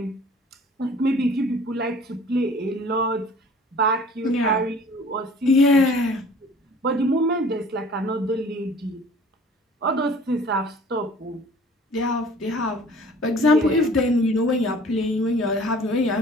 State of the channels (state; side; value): normal; both; correlation 0.49